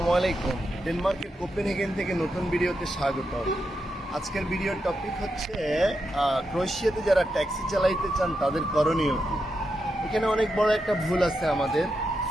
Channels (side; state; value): both; normal; correlation 0.85